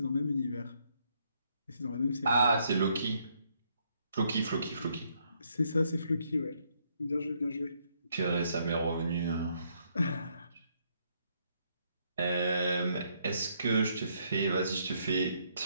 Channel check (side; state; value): both; inverted; correlation -0.72